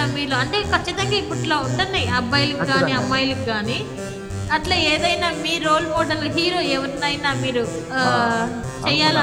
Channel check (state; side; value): identical; both; correlation 1.00